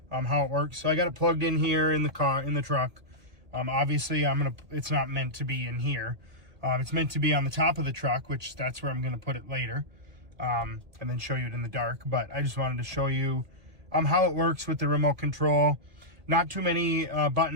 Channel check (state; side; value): late; left; 1.9 ms